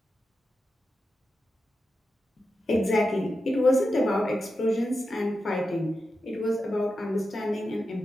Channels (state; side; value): normal; both; correlation 0.89